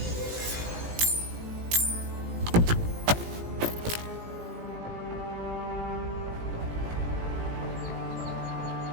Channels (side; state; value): left; late; 18 ms